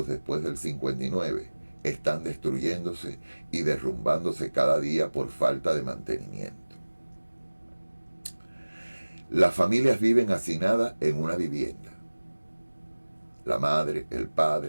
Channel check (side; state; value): both; inverted; correlation -1.00